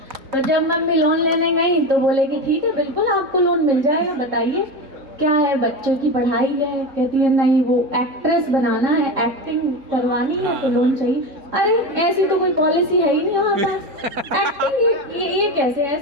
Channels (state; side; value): late; left; 3.6 ms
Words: तो जब मम्मी लोन लेने गई तो बोले कि ठीक है बिल्कुल आपको लोन मिल जाएगा, बताइए क्या है, बच्चों की पढ़ाई है। कहती है नहीं, वो एक्ट्रेस बनाना है, एक्टिंग करवानी है तो लोन चाहिए। अरे ऐसी तो कोई पॉलिसी है ही नहीं हमारे पास, एक्टिंग ये कैसे,